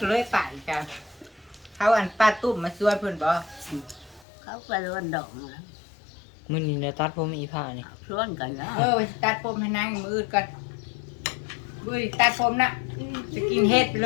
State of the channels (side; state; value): right; drops out; at 4.2 s